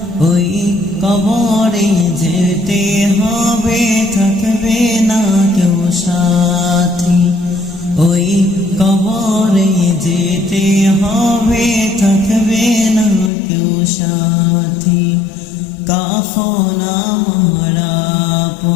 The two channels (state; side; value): drops out; right; at 13.3 s